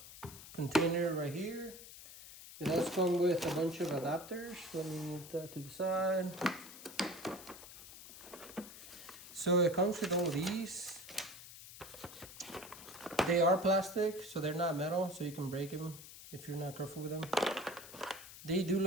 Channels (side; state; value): left; noise; hiss, 15 dB below the sound